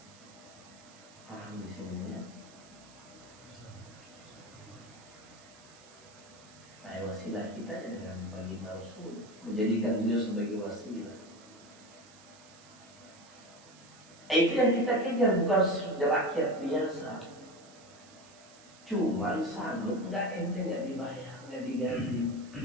Paham di sini ya? Nah, wasilah kita dengan baginda Rasul, menjadikan beliau sebagai wasilah. Itu yang kita kejar, bukan rakyat biasa. Cuman sanggup nggak, ente nggak dibayar, nggak digaji.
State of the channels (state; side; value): noise; right; hiss, 23 dB below the sound